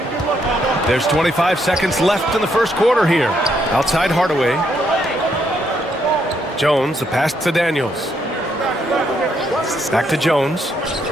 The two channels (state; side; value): normal; both; correlation 0.75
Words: There's 25 seconds left in the first quarter here. Outside Hardaway. Jones, the pass to Daniels. Back to Jones.